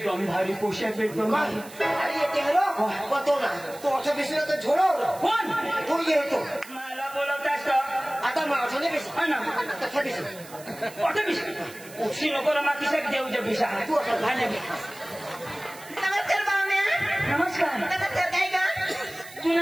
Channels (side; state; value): right; noise; hiss, 18 dB below the sound